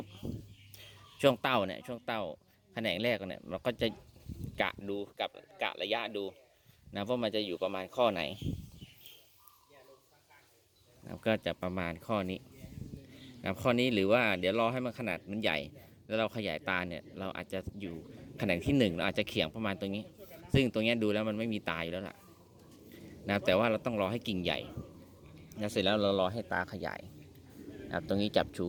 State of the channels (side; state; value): both; identical; correlation 1.00